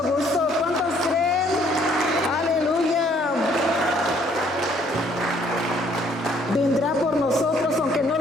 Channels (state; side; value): normal; both; correlation 0.63